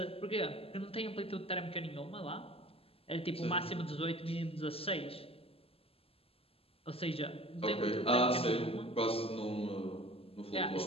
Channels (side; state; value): right; late; 0.28 ms